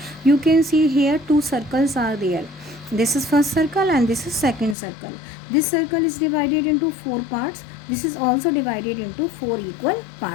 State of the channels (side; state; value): right; drops out; at 4.8 s